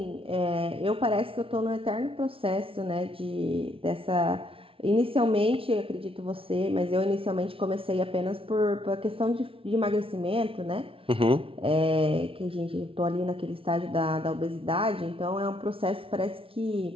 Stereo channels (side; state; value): left; late; 0.26 ms